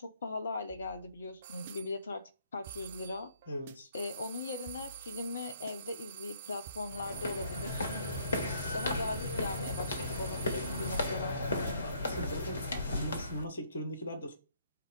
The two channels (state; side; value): inverted; both; correlation -0.65